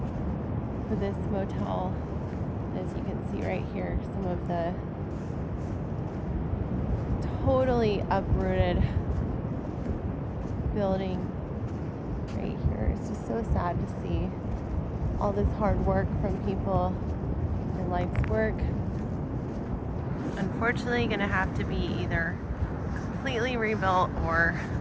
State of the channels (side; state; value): both; identical; correlation 1.00